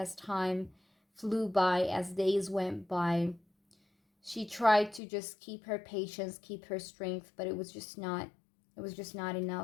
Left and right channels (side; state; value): right; drops out; at 5.0 s